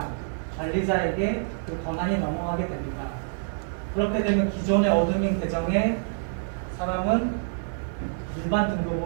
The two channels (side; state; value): left; silent; digital silence